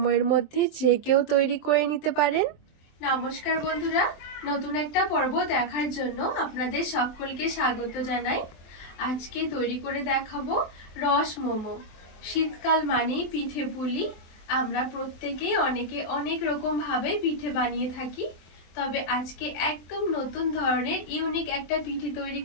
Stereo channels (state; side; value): late; right; 23 ms